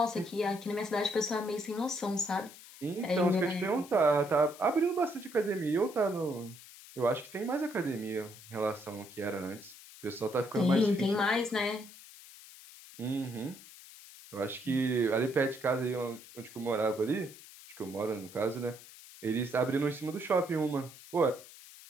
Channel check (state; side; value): noise; left; hiss, 18 dB below the sound